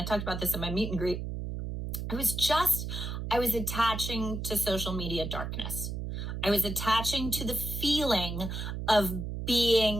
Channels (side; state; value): right; noise; hum, 5 dB below the sound